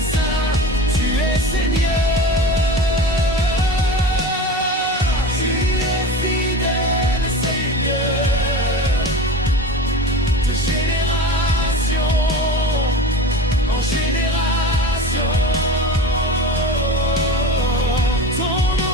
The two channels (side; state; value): both; normal; correlation 0.32